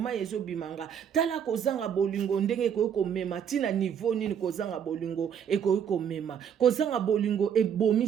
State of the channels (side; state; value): left; quieter; 8.3 dB